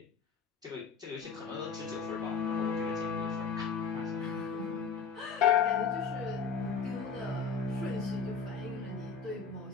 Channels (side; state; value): right; quieter; 5.7 dB